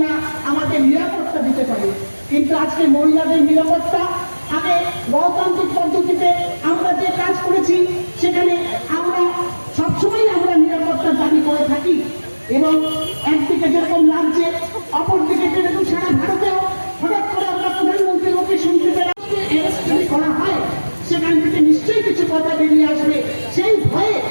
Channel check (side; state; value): both; inverted; correlation -1.00